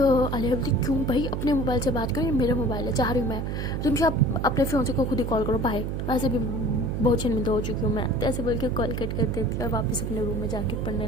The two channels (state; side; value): noise; right; hum, 2 dB below the sound